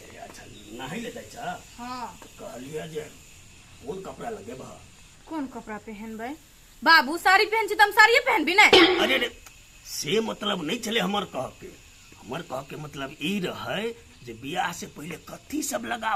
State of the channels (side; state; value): both; identical; correlation 1.00